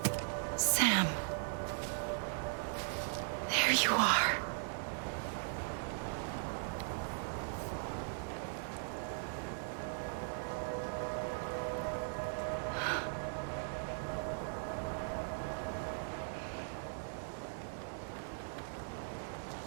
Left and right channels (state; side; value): silent; left; digital silence